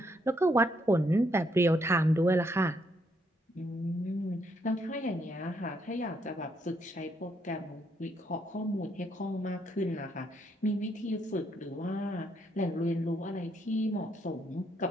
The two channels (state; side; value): normal; both; correlation 0.74